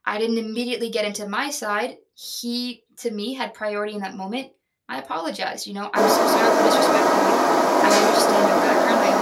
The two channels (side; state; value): both; identical; correlation 1.00